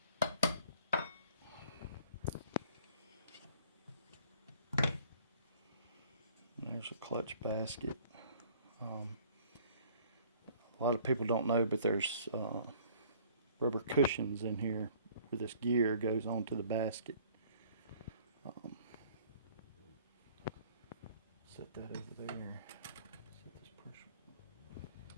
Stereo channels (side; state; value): both; inverted; correlation -0.55